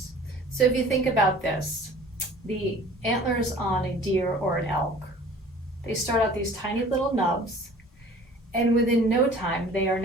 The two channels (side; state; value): both; normal; correlation 0.48